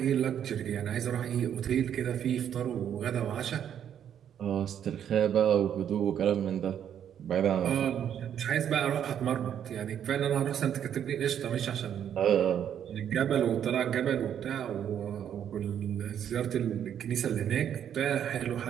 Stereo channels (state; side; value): quieter; left; 9.3 dB